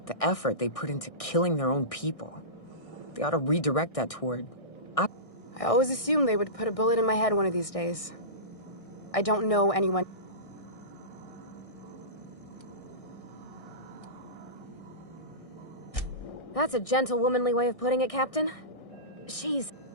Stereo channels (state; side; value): late; right; 1.6 ms